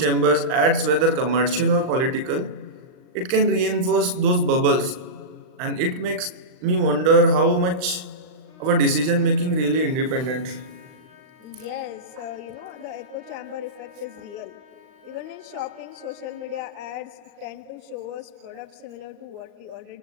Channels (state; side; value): late; left; 39 ms